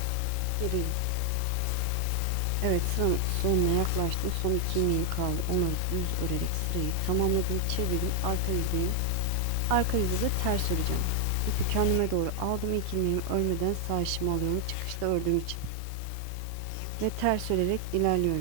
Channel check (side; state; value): both; different; correlation 0.00